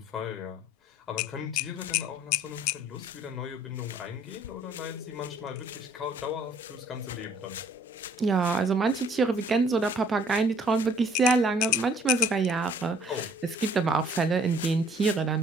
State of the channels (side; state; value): both; normal; correlation 0.59